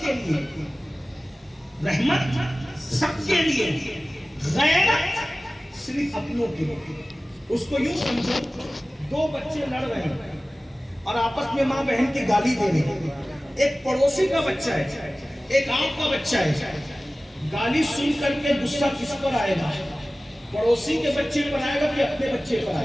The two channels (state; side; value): normal; both; correlation 0.97